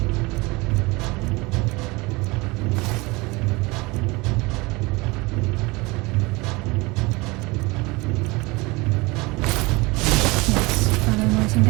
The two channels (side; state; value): left; quieter; 24.2 dB